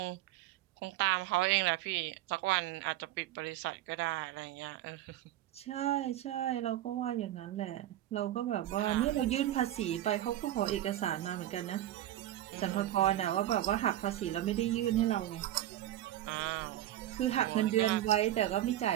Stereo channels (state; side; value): quieter; left; 13.5 dB